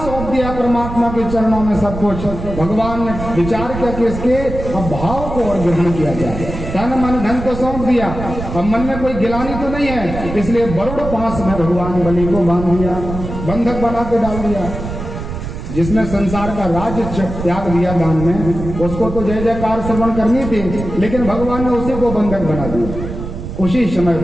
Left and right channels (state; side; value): noise; right; rumble, 8 dB below the sound